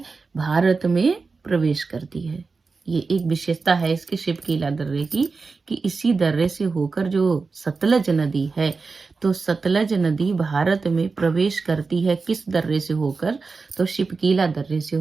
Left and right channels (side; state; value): left; quieter; 4.4 dB